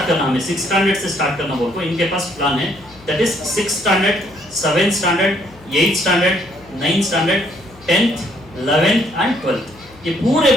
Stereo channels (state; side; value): noise; left; hum, 25 dB below the sound